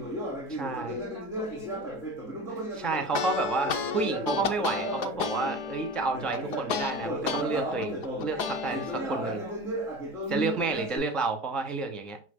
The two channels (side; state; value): right; late; 4.9 ms